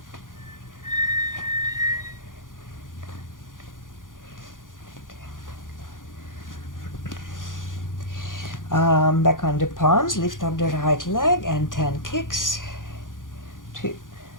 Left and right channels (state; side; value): late; right; 0.89 ms